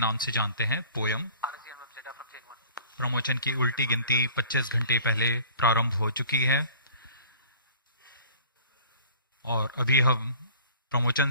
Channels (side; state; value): both; inverted; correlation -0.49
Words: से जानते हैं, पोयम। प्रमोचन की उल्टी गिनती 25 घंटे पहले प्रारंभ हो चुकी है और अभी हम प्रमोचन